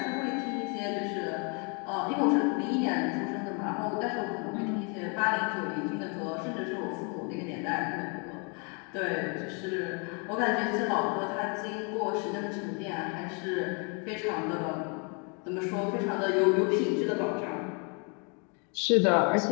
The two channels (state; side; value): quieter; right; 35.3 dB